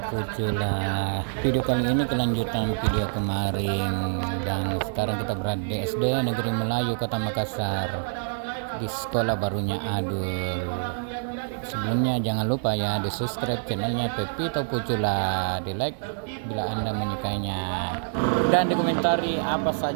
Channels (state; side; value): silent; left; digital silence